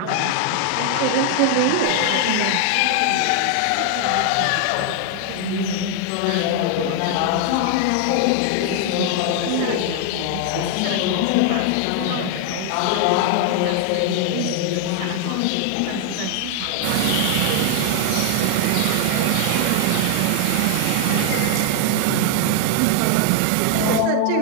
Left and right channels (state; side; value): different; both; correlation 0.00